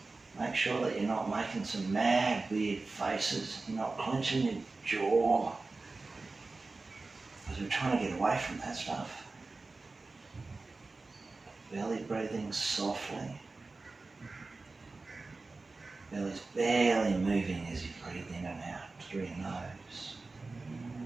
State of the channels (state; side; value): quieter; left; 3.6 dB